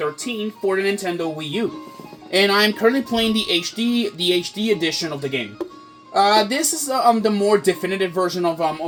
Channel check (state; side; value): identical; both; correlation 1.00